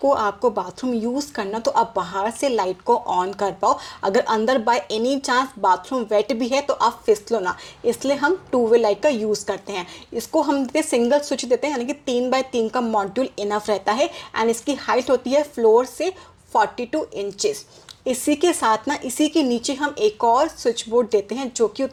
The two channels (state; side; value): identical; both; correlation 1.00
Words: आपको बाथरूम यूज़ करना तो आप बाहर से लाइट को ऑन कर पाओ। अगर अंदर by any chance bathroom wet भी है तो आप फिसलो ना, इसलिए हम 2 वे लाइट का यूज़ करते हैं। इसको हम देते सिंगल स्विच देते हैं, यानी कि 3x3 का मॉड्यूल इनफ रहता है। एंड इसकी हाइट होती है फ्लोर से 42 इंचेस। इसी के साथ ना इसी के नीचे हम एक और स्विच बोर्ड देते हैं जो कि